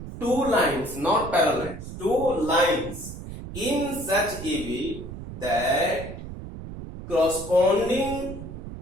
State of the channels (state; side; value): noise; right; rumble, 10 dB below the sound